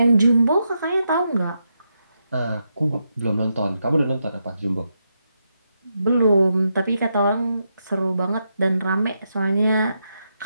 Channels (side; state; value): both; inverted; correlation -0.84